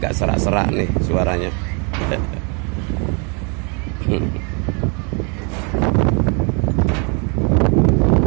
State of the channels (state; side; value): quieter; left; 34.9 dB